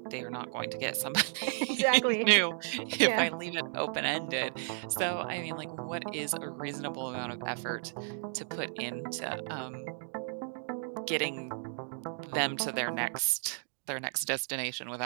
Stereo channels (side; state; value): left; silent; digital silence